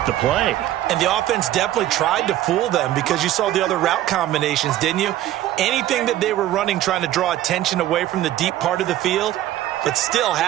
the play. And the offense definitely tried to fool them, because you saw the other route combinations, didn't you? Anything that they were running trying to draw attention away from the deep part of the field, but still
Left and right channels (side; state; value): left; quieter; 13.6 dB